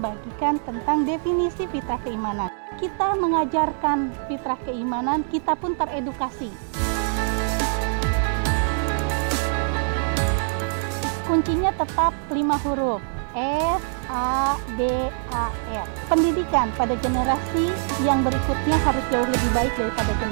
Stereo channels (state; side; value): silent; left; digital silence